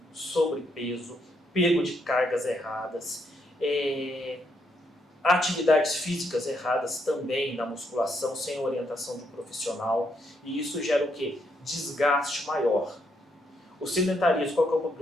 sobrepeso, pego de cargas erradas, atividades físicas erradas também na musculação, sem orientação de um profissional. E isso gera o quê? Desgaste maior. O sedentarismo, qual que é o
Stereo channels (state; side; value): normal; both; correlation 0.76